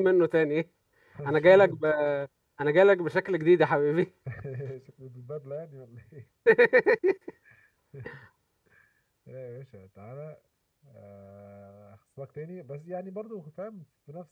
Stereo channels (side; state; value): both; identical; correlation 1.00